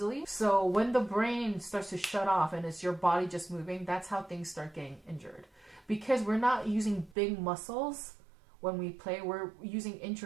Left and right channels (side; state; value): left; drops out; at 7.2 s